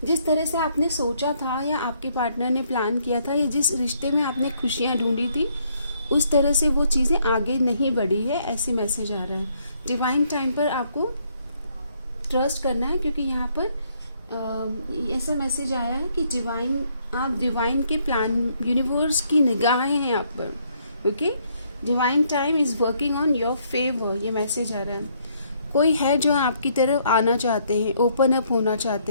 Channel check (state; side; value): inverted; both; correlation -0.70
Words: जिस तरह से आपने सोचा था या आपके पार्टनर ने प्लान किया था या जिस रिश्ते में आपने खुशियाँ ढूंढी थी, उस तरह से वो चीज़ें आगे नहीं बढ़ी है, ऐसी मैसेज आ रहा है। डिवाइन टाइम पर आपको ट्रस्ट करना है, क्योंकि यहाँ पर ऐसा मैसेज आया है कि आप डिवाइन के प्लान, यूनिवर्स की निगाहें हैं आप पर। Okay, divine time is working on your favour, ये मैसेज आ रहा है। कोई है जो आपकी तरफ आना चाहते हैं, ओपन अप होना